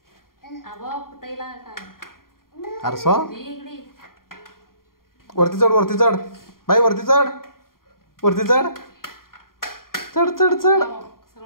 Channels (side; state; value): right; late; 0.92 ms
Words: अरे सो वरती चढ, वरती चढ बाई, वरती चढ, वरती चढ, चढ चढ चढ